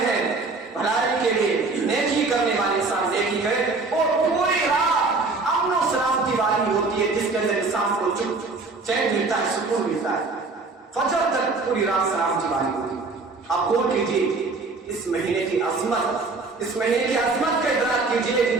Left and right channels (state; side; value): quieter; left; 3.8 dB